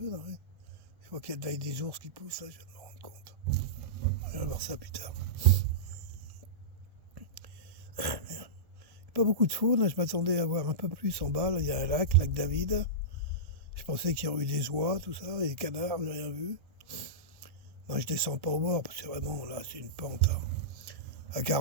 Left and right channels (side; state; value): left; late; 1.1 ms